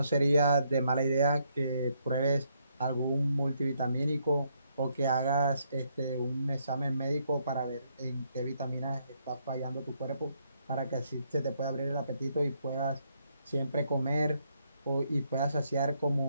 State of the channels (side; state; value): both; inverted; correlation -0.74